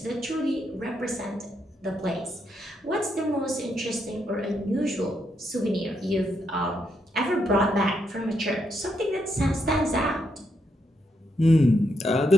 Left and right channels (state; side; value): normal; both; correlation 0.79